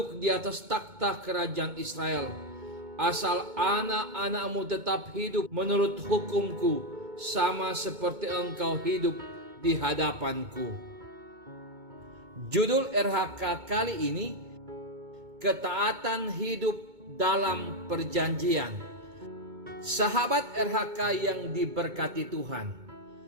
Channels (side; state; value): left; late; 2.2 ms